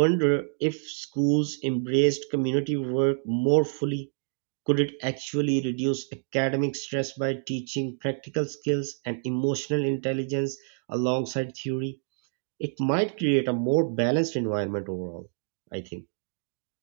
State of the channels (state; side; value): silent; left; digital silence